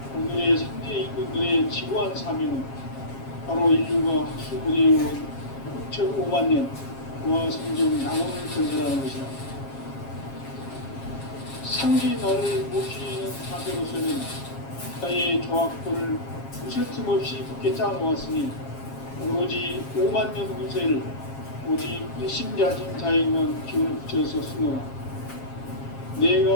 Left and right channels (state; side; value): late; right; 7.4 ms